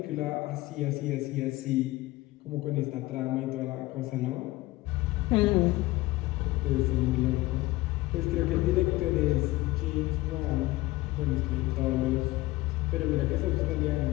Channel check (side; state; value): right; quieter; 18.9 dB